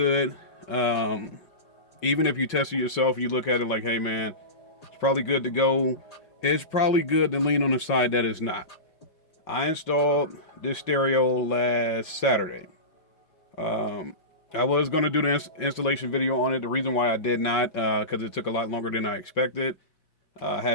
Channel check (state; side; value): late; right; 5.4 ms